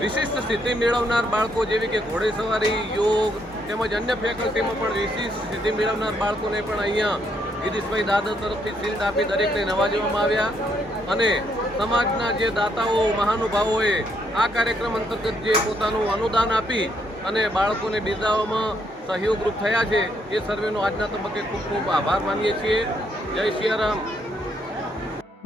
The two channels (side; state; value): both; normal; correlation 0.73